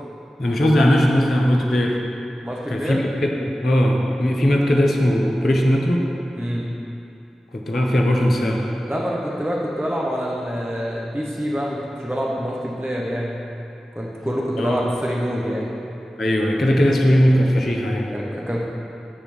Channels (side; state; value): both; normal; correlation 0.95